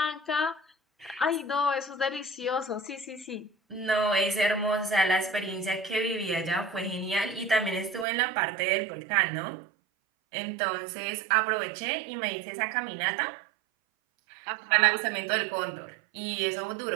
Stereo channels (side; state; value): left; drops out; at 8.1 s